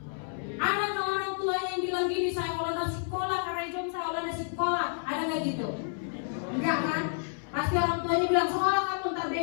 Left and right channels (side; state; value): right; silent; 58 dB below the other